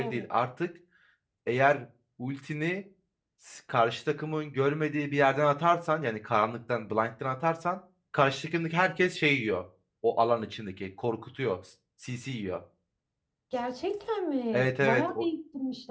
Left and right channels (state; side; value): identical; both; correlation 1.00